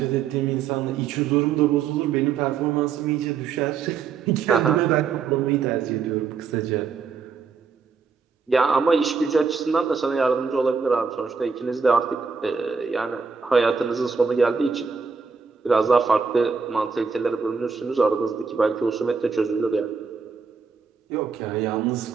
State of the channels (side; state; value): left; quieter; 5.6 dB